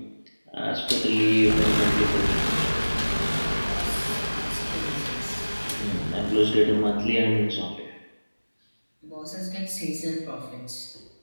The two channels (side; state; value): both; inverted; correlation -1.00